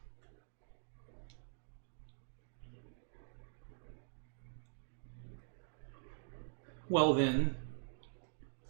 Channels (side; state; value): left; silent; digital silence